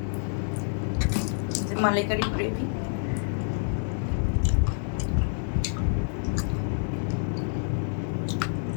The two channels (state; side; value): silent; right; digital silence